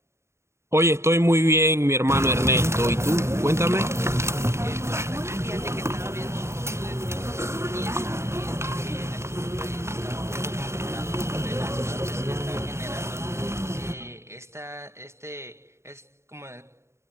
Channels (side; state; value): left; late; 0.13 ms